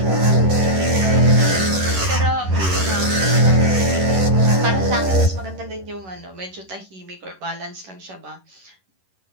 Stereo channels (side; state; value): left; late; 11 ms